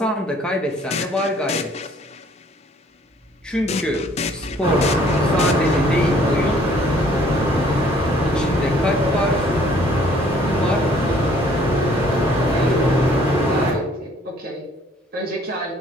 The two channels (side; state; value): both; normal; correlation 0.59